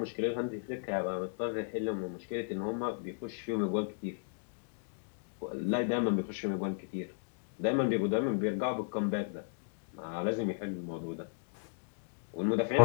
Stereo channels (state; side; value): silent; right; digital silence